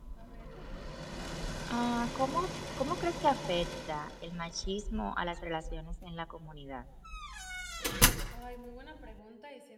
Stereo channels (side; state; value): both; identical; correlation 1.00